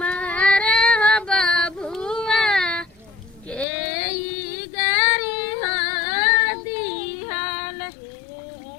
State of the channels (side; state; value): right; drops out; at 3.7 s